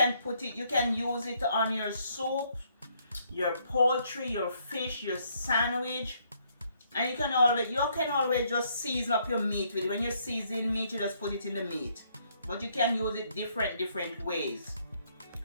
use it on your soup, your poultry, your fish, your sandwich. And you can always just season up your meat with it. When you season meat, you just put it in the meat. But you can use it different ways.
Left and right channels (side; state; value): both; inverted; correlation -0.70